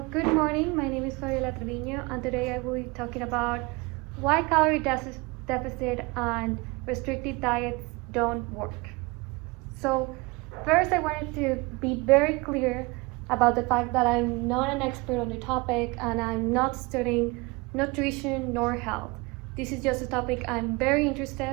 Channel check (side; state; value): left; quieter; 25.5 dB